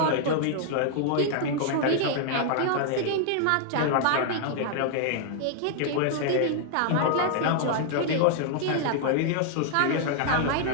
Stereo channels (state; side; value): different; both; correlation -0.01